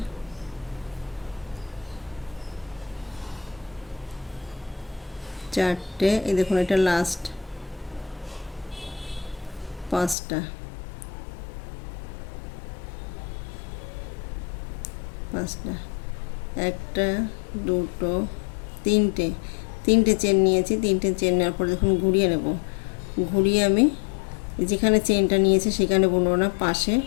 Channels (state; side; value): drops out; right; at 10.2 s